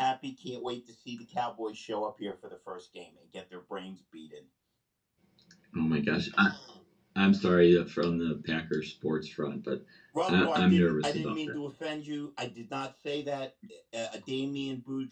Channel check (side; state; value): both; identical; correlation 1.00